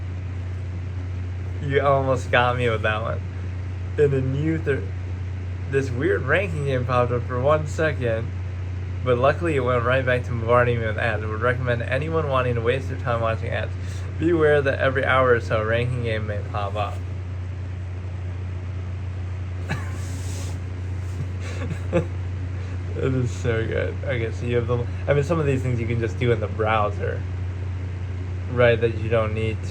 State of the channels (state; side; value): identical; both; correlation 1.00